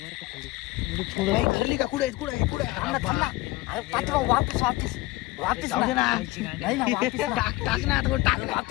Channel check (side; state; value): right; quieter; 20.0 dB